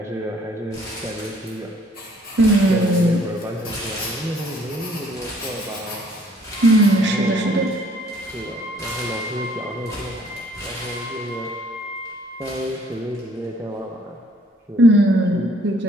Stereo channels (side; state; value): both; normal; correlation 0.60